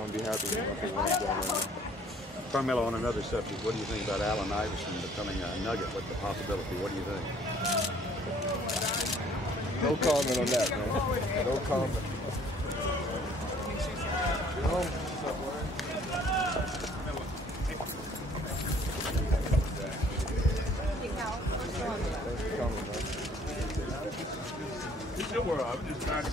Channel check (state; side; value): normal; both; correlation 0.58